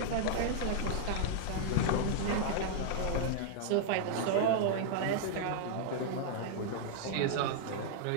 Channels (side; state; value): both; different; correlation -0.01